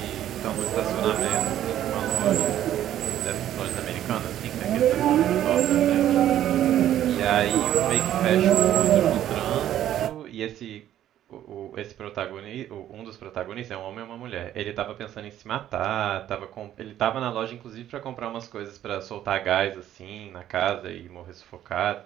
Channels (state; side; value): quieter; left; 11.8 dB